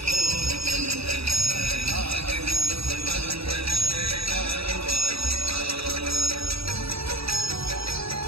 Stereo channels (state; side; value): late; left; 0.77 ms